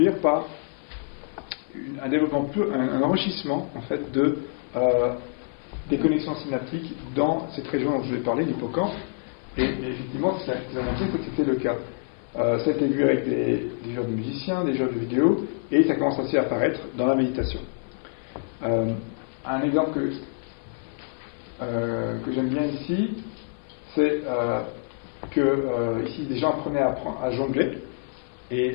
par un développement, un enrichissement en fait des connexions synaptiques dans cette région dont je vous ai parlé, l'hippocampe. Et effectivement, ce qu'ils ont montré, c'est que c'était le cas. Ça a été vu avec des jeux de musiciens, des jeux de vidéo, et ça commence aussi à apparaître dans la méditation. Un exemple que j'aime bien ici, c'est que ici des gens apprenaient à jongler,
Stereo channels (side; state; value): right; silent; 55 dB below the other